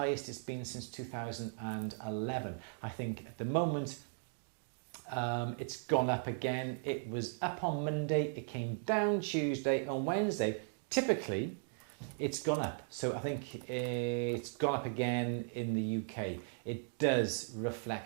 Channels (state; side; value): silent; left; digital silence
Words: it's been since 2011. I think at the moment, it's gone up again. It was up on Monday, it came down Tuesday. On Wednesday, typically, it's gone up. So I think it's gone up again in the UK. It does